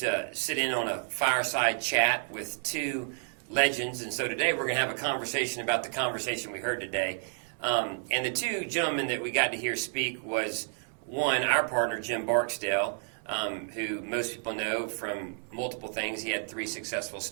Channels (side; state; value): left; silent; 57 dB below the other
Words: to sit in on a fireside chat with two legends. And so today we're going to have a conversation about the conversation we heard today. And the two gentlemen that we got to hear speak was, one, our partner, Jim Barksdale, who most people know from multiple things. He had 3 successful